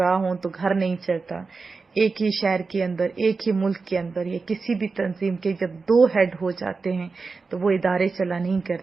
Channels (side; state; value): left; quieter; 4.4 dB